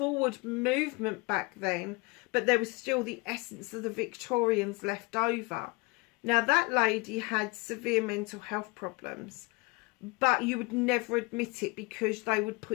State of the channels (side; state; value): right; quieter; 26.9 dB